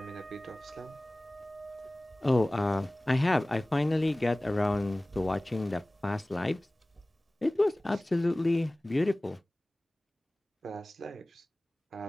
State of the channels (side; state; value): both; normal; correlation 0.98